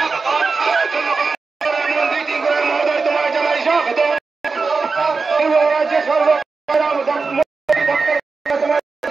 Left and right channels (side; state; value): left; quieter; 4.4 dB